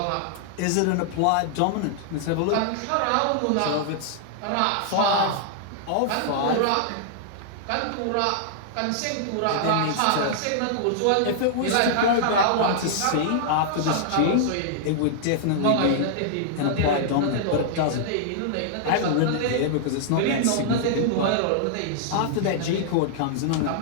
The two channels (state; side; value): different; both; correlation -0.01